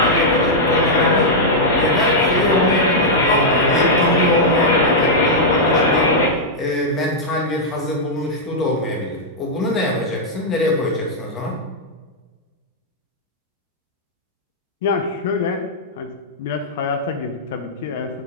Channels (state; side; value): normal; both; correlation -0.07